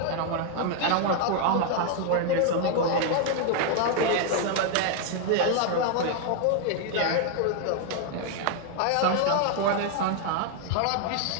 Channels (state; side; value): different; both; correlation 0.00